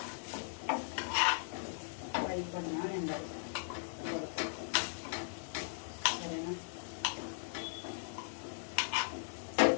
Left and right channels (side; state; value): right; silent; 52 dB below the other